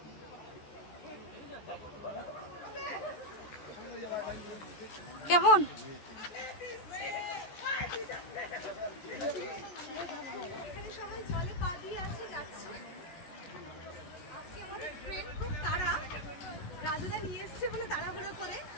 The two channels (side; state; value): right; late; 14 ms